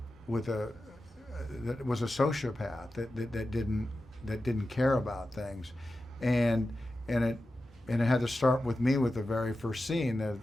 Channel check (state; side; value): normal; both; correlation 0.92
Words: that was a sociopath that didn't care about things, and and it and it had to start with me with the very first scene of